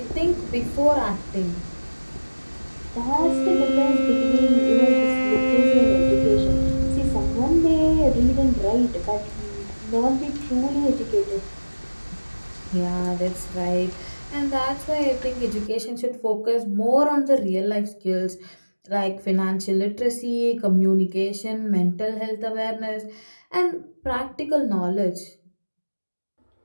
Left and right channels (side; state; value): both; inverted; correlation -1.00